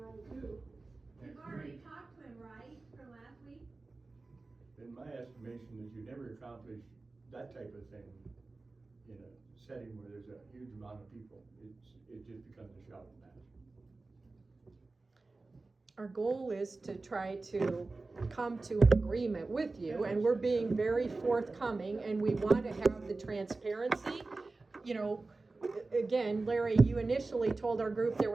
too. You've already talked to him, right, from last week? In my estimation is you never accomplish that type of thing in a setting where there's a huge amount of people. It just becomes a shouting match. Our goal is to try to come to an agreement with you, and we're being very forthcoming, and we want to have the transparency. You know, again, Larry, you initially told our group there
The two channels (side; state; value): left; quieter; 3.5 dB